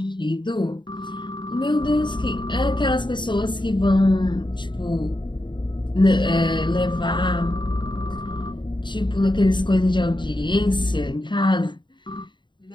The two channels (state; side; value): late; right; 0.23 ms